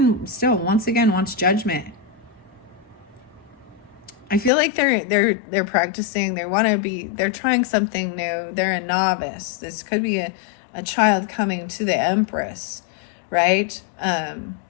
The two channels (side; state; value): right; drops out; at 4.5 s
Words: still once again wants judgment. I feel like they're practicing. They're trying something new. They're a novice. This could be a child coming to the Empress, right?